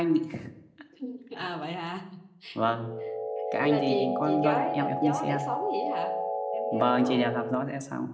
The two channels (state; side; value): identical; both; correlation 1.00